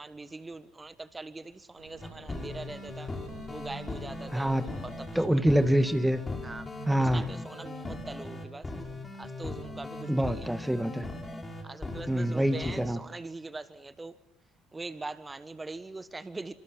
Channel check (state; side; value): normal; both; correlation 0.94